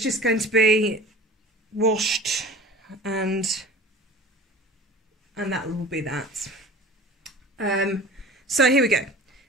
just going to be washed, and that will be that. So here we go.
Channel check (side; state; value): both; normal; correlation 0.40